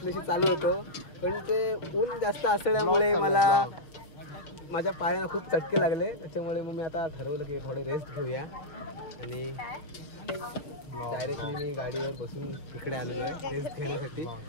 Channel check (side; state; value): right; late; 5.9 ms